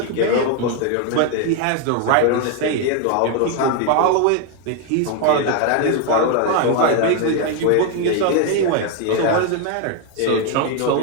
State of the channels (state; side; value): different; both; correlation 0.01